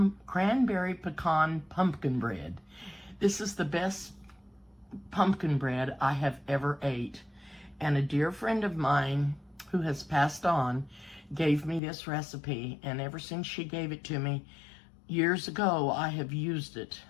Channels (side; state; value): right; drops out; at 11.8 s